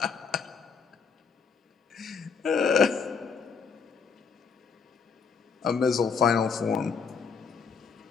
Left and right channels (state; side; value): quieter; right; 5.8 dB